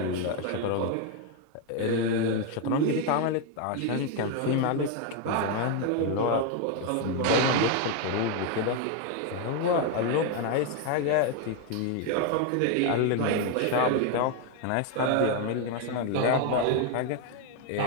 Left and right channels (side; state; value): both; different; correlation 0.01